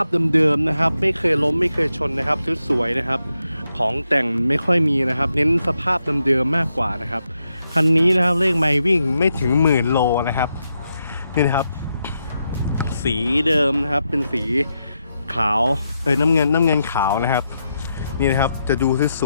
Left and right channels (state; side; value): inverted; both; correlation -0.84